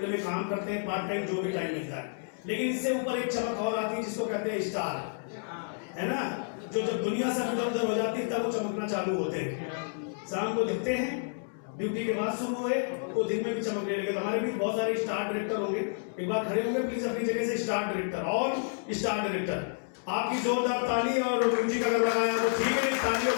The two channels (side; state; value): right; silent; digital silence